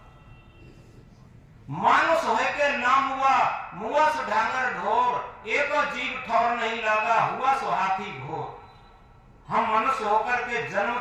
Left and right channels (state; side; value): identical; both; correlation 1.00